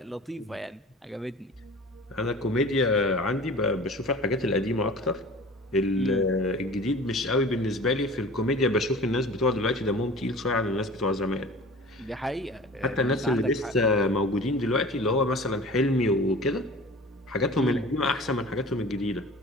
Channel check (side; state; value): both; normal; correlation 0.41